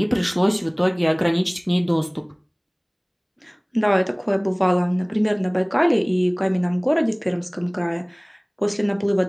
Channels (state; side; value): identical; both; correlation 1.00